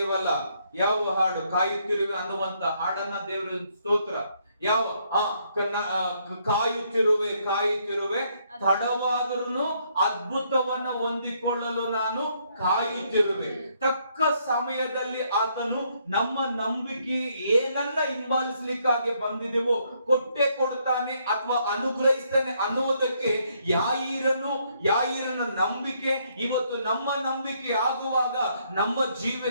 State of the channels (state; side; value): inverted; both; correlation -0.71